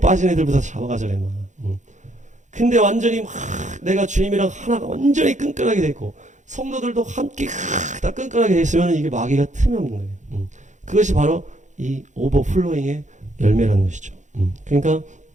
애들부터 잡아가잖아요. 막. 근데 완전히 막 내가 주님이랑 하나가 완전히 끈끈하게 돼 있고 성도들도 함께 다 끈끈하게 돼 있으면 이게 마귀가 틈이 없는 거예요. 그것이 바로 이 오버플로잉의 열매라는 것이죠. 그러니까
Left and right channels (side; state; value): left; late; 0.35 ms